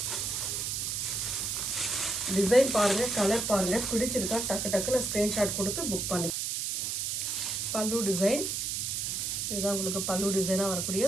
Design பாருங்க, கலர் பாருங்க, பிடிச்சிருக்கா டக்கு டக்குன்னு ஸ்கிரீன்ஷாட் கொடுத்து புக் பண்ணி. பல்லு டிசைன், இதுதான் உங்களுக்கு பல்லு டிசைனாக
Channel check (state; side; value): noise; right; hiss, 1 dB below the sound